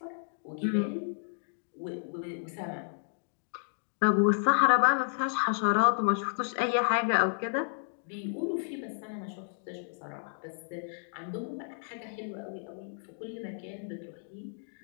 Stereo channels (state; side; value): silent; right; digital silence